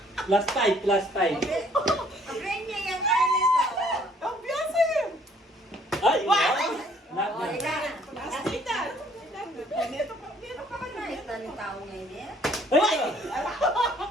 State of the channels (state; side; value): normal; both; correlation 0.60